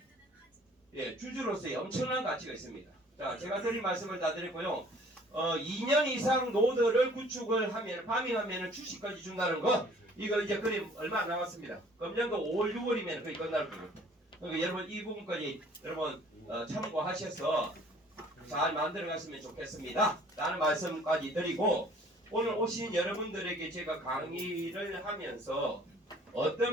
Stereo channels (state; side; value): normal; both; correlation 0.54